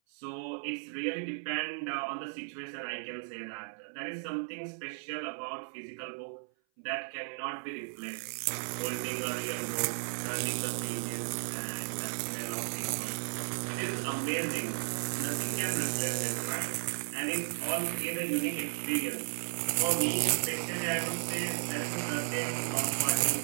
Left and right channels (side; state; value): left; silent; 55 dB below the other